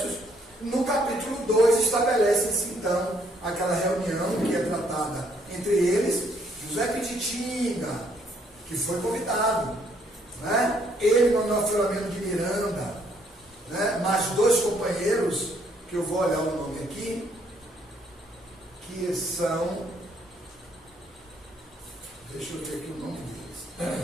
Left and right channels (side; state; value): both; normal; correlation 0.68